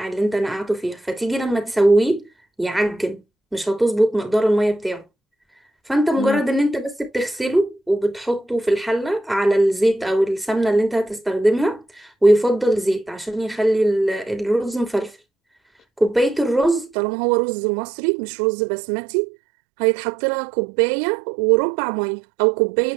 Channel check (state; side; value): drops out; left; at 16.9 s